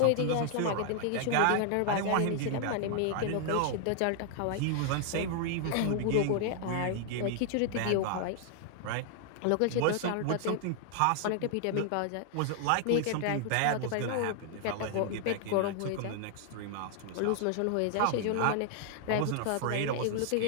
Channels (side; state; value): both; different; correlation 0.00